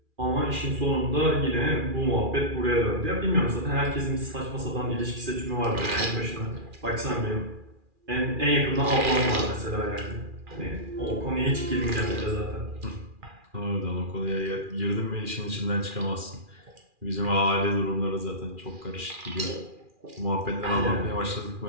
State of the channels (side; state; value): left; late; 2.4 ms